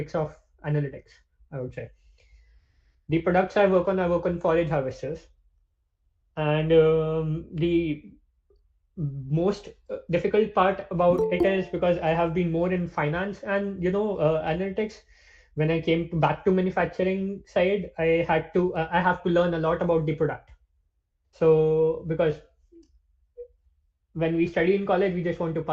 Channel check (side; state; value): both; identical; correlation 1.00